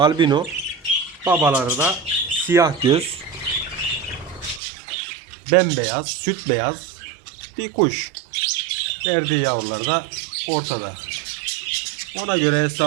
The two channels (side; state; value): left; drops out; at 4.6 s